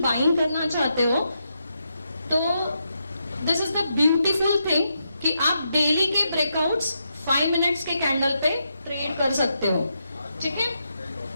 बाइंग करना चाहते हो, तो this is the beautiful thing कि आप डेली के ब्रेकआउट्स 5 मिनट्स के कैंडल पे ट्रेड कर सकते हो, ठीक है।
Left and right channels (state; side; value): inverted; both; correlation -0.82